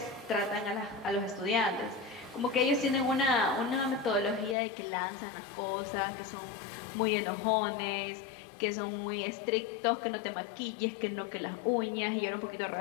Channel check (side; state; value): right; drops out; at 4.5 s